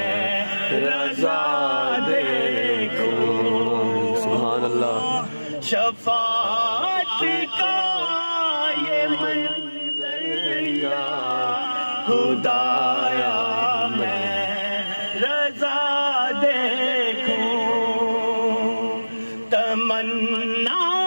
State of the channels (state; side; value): inverted; both; correlation -1.00